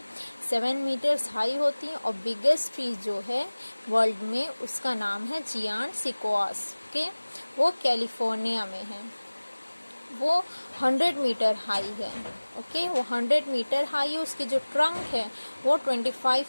7 meters high होती हैं. और biggest trees जो है वर्ल्ड में उसका नाम है जियांट सिकोआस. ओके, वो कैलिफोर्निया में है. वो 100 मीटर हाई है. ओके, वो 100 मीटर हाई है. उसकी जो ट्रंक है वो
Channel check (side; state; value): both; inverted; correlation -1.00